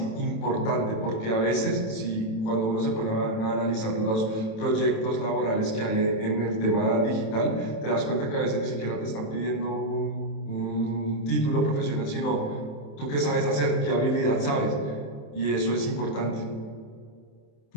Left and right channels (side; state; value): right; late; 27 ms